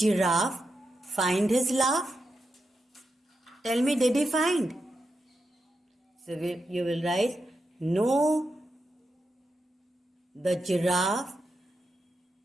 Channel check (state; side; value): normal; both; correlation 0.87